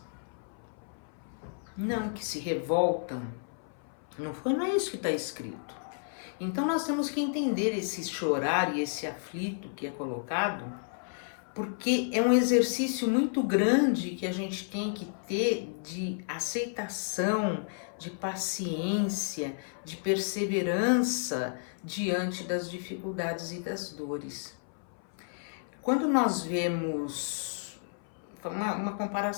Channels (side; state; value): right; silent; 57 dB below the other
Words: Não, que se revoltam. Não é isso que está escrito. Então nós temos que entender esse chorar e esse aflito que é colocado, porque é um exercício muito grande que a gente tem que ter de aceitação, de paciência, de perseverança diante das dificuldades e das dores. Quando nós vemos uma